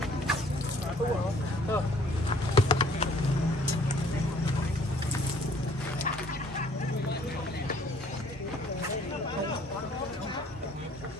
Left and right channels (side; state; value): both; normal; correlation 0.57